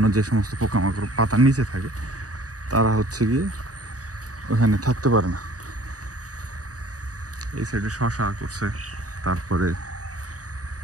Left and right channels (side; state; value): left; late; 0.67 ms